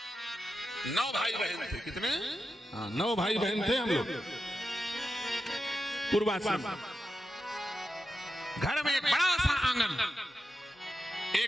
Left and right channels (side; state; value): both; normal; correlation 0.90